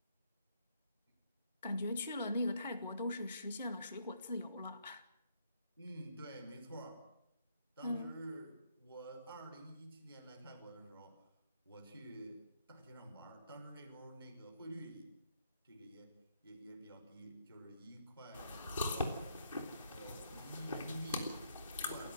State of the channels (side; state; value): both; inverted; correlation -0.73